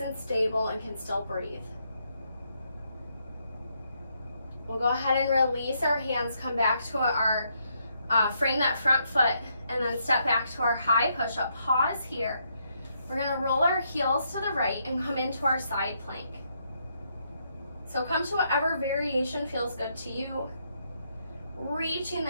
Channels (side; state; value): both; inverted; correlation -0.76